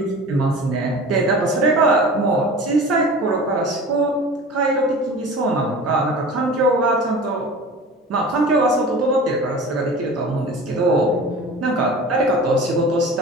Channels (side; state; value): both; normal; correlation 0.37